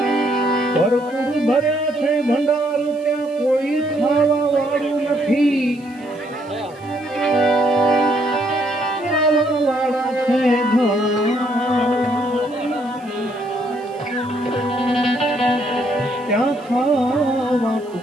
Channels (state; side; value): noise; right; hiss, 29 dB below the sound